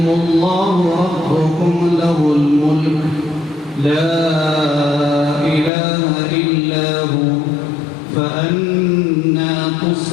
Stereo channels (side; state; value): right; drops out; at 5.7 s